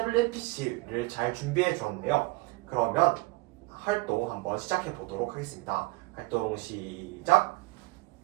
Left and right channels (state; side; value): quieter; left; 23.7 dB